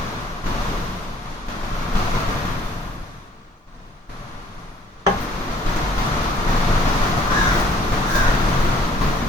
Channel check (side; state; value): both; normal; correlation 0.59